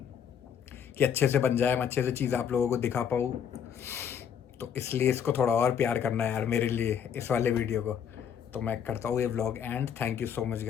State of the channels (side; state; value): right; quieter; 8.1 dB